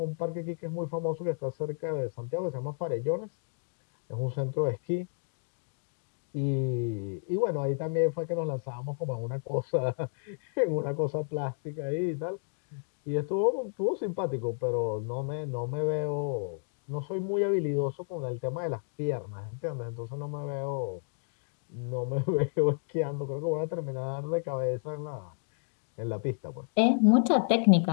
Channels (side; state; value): right; silent; digital silence